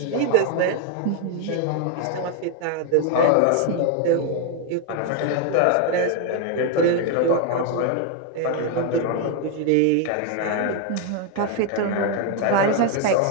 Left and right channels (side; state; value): both; different; correlation 0.00